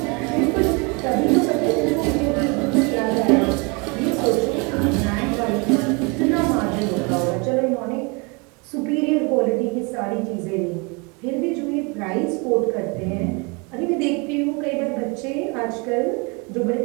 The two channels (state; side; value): quieter; left; 30.5 dB